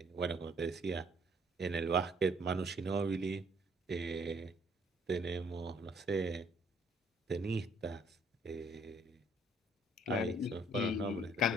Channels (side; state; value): both; normal; correlation 0.63